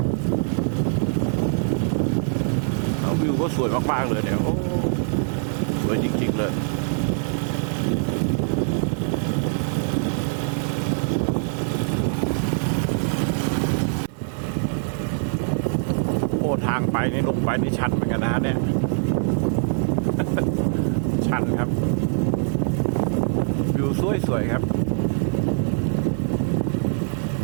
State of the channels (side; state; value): left; silent; 59 dB below the other